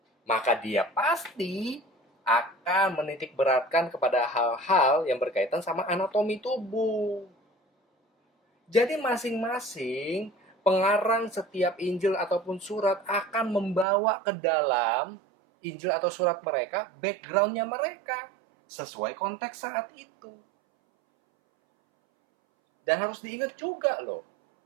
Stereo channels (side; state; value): left; drops out; at 13.9 s